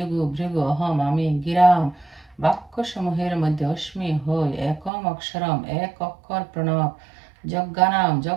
ভৃগু অহম আমি গিরাম বাক্যসমূহের মধ্যে অস্মি হই একম অক্ষরম এক অক্ষর প্রণব যজ্ঞানাম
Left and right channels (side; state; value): left; drops out; at 4.9 s